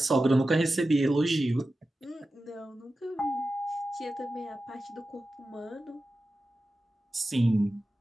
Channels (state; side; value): normal; both; correlation 0.93